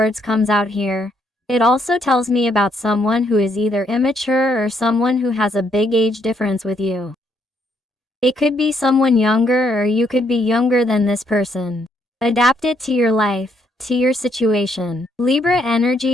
comes out here, it also tells me about someone who is either immature or someone who has a big age difference with you. It could be someone younger, or you could be younger than this person. Adapt it to your life, to your situation. Libra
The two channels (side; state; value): both; normal; correlation 0.72